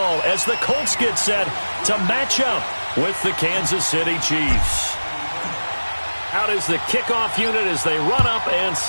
as the Colts get set to match up with the Kansas City Chiefs. Out is the kickoff unit as they run up and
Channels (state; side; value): inverted; both; correlation -1.00